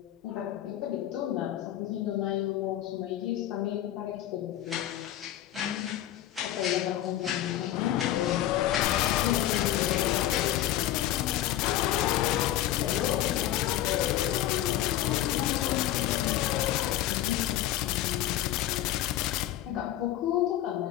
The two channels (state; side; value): quieter; right; 13.2 dB